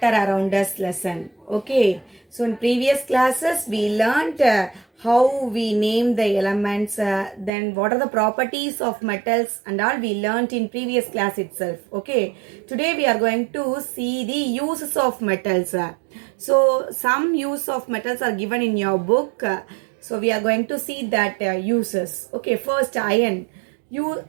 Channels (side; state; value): left; drops out; at 7.5 s